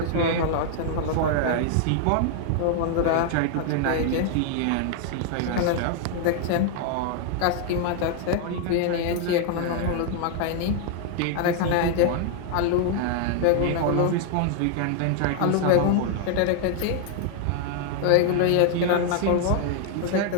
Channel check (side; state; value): both; different; correlation 0.00